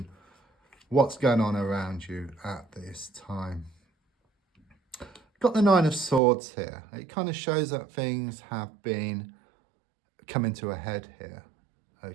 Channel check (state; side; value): drops out; left; at 6.2 s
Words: What's going on around you at this time? Got the Nine of Swords here. It kind of shows that things have been coming to a head here.